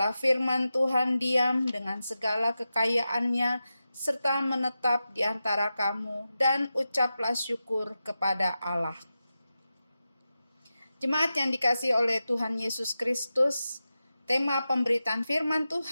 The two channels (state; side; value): inverted; both; correlation -0.92